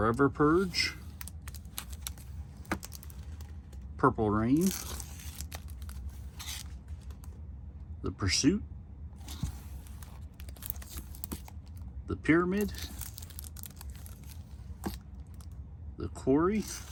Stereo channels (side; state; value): both; identical; correlation 1.00